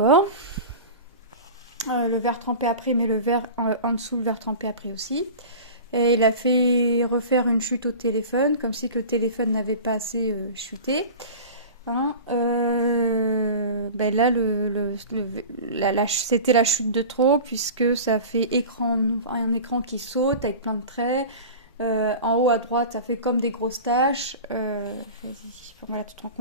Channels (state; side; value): inverted; both; correlation -0.34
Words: le verre trempé après, mais le verre en dessous, le verre trempé après aussi. Et il a fait refaire une chute au téléphone, comme si le téléphone n'avait pas assez chuté. Hein, ben là, c'était la chute de trop, puisque ça fait un écran qui saute avec plein de traits. En haut à droite, ça fait comme des grosses taches. Voilà, tu te rends